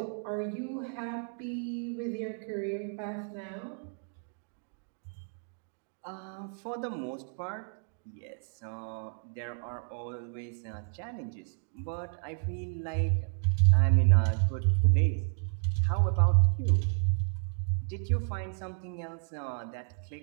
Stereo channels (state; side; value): silent; left; 57 dB below the other